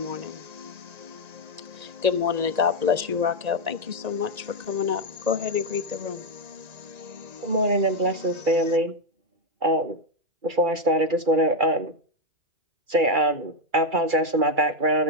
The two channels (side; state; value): left; late; 1.9 ms